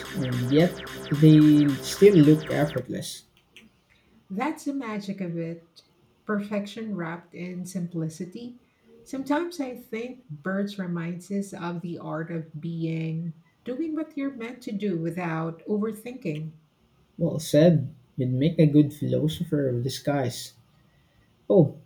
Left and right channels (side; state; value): both; identical; correlation 1.00